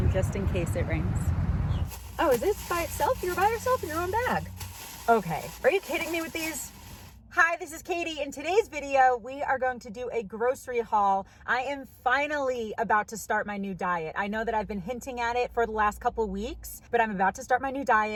just in case it rains. Oh, is this by itself? You're by yourself in your own bag. Okay, are you kidding me with these? Hi, this is Katie. In today's video, we are going to do a grocery haul. I am finally about to start my new diet. I know that I've been hinting at it for the last couple weeks, but I'm about to start my new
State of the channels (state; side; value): identical; both; correlation 1.00